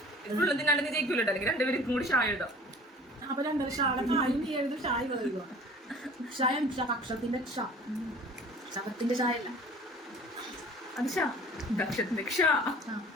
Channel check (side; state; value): both; normal; correlation 0.46